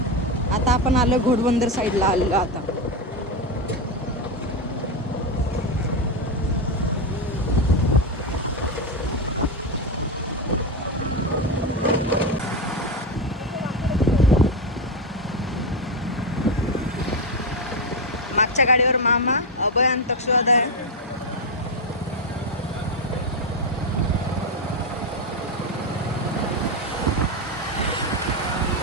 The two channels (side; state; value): both; normal; correlation 0.10